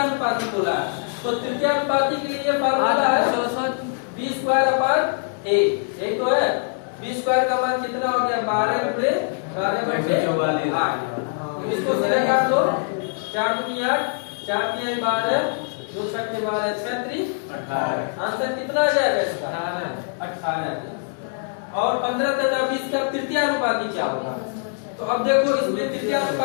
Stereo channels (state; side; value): silent; right; digital silence